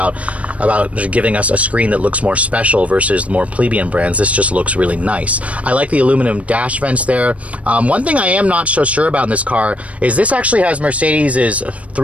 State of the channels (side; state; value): left; late; 0.065 ms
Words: giving us a screen that looks more special versus the more plebeian brands. This just looks really nice. I like the aluminum dash vents there. One thing I am not so sure about in this car is this actually has Mercedes'